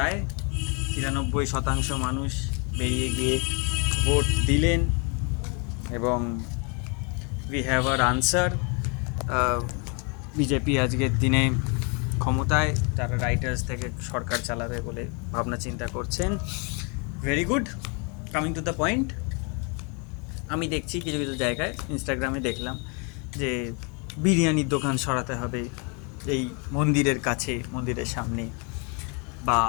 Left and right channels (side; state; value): right; quieter; 34.2 dB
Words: 93% মানুষ বেরিয়ে গিয়ে ভোট দিলেন এবং we have our answer. BJP আজকের দিনে ক্ষমতায়, তারা রাইটার্স থেকে সরকার চালাবে বলে ভাবনা চিন্তা করছেন। Very good. Coming to the point, আমি দেখছি কিছু কিছু জায়গায় ইনস্টাগ্রামে দেখলাম যে বিরিয়ানির দোকান সরাতে হবে এই মন্দিরের কাছে, মন্দিরের সামনে, বা